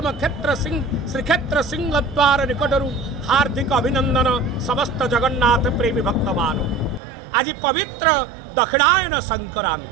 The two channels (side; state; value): left; drops out; at 7.0 s